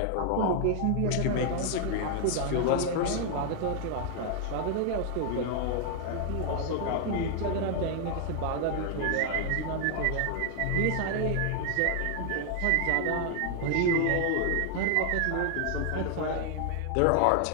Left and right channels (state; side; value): different; both; correlation 0.00